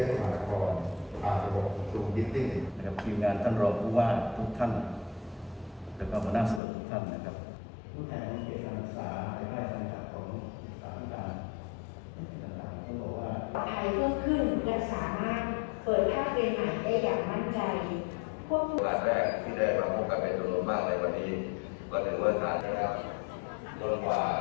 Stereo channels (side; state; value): right; drops out; at 6.6 s